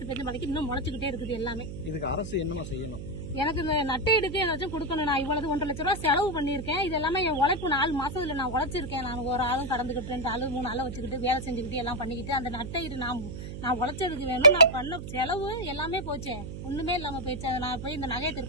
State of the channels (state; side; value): noise; right; hum, 9 dB below the sound